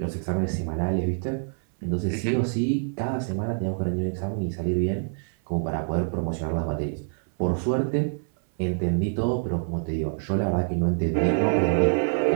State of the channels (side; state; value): left; silent; 61 dB below the other